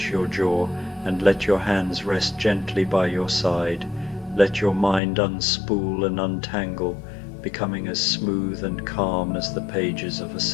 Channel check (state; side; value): drops out; right; at 5.0 s